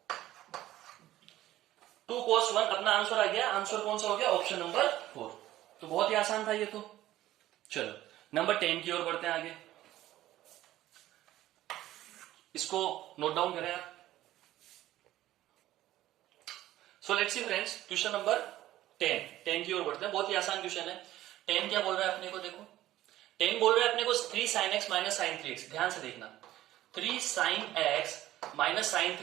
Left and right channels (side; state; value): left; quieter; 14.5 dB